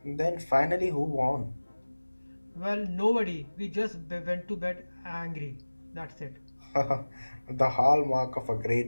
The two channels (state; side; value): inverted; both; correlation -1.00